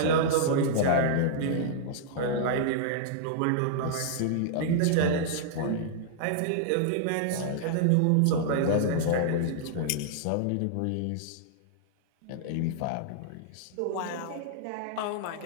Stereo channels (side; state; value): both; different; correlation -0.01